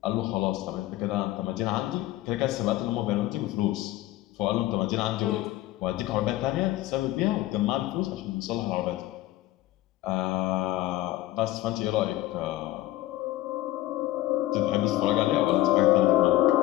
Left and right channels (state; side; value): quieter; right; 16.0 dB